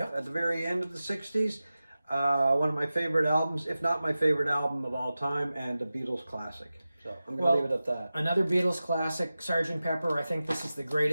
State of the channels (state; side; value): inverted; both; correlation -0.95